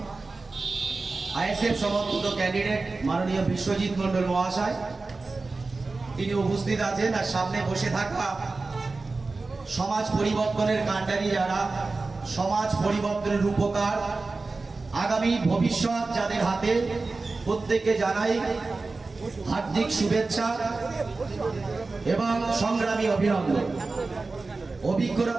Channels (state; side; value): quieter; left; 3.7 dB